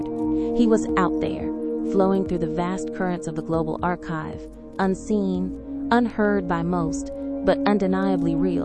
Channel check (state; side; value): identical; both; correlation 1.00